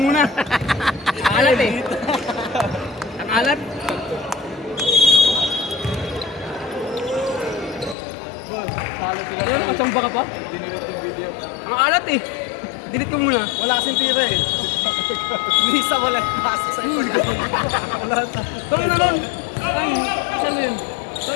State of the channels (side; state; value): right; drops out; at 8.0 s